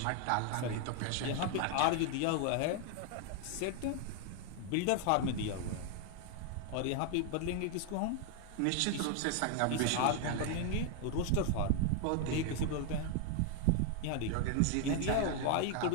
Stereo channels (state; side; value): different; both; correlation 0.00